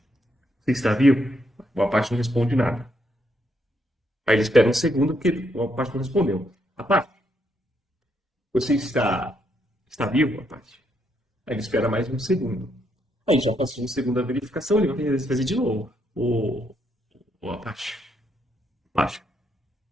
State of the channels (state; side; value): normal; both; correlation 0.76